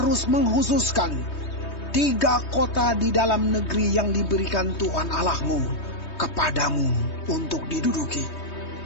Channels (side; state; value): right; late; 3.2 ms